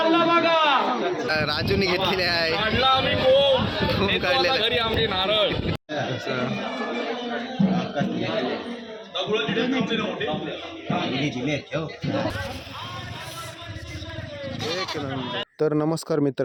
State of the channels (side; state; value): both; identical; correlation 1.00